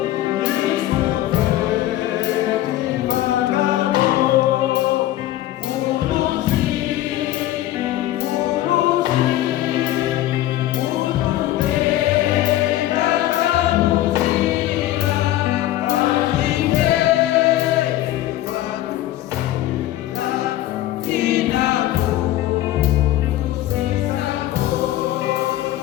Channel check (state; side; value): quieter; right; 14.3 dB